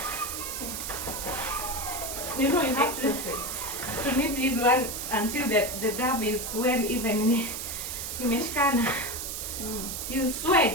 You know, you have to knead this one until the dough is well even imeshikana. You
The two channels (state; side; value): noise; right; hiss, 5 dB below the sound